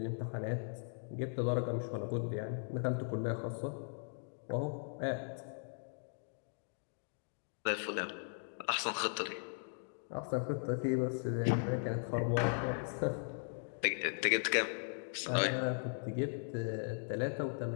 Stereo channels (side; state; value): right; silent; digital silence